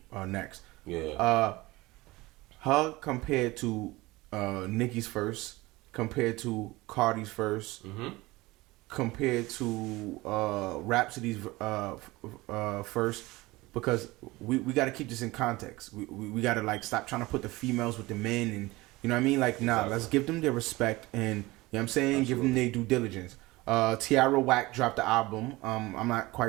next. Yeah. Her compared to Nicki's first, compared to Cardi's first, compared to Rhapsody's first, because we got to keep this in context. We got to like stop trying to put the females with the men, and you know what I mean. Like, nah, let's give them their respect, and you know what I'm saying, give them their due diligence. Tiara Wack dropped the album. I'm not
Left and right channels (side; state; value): left; quieter; 20.7 dB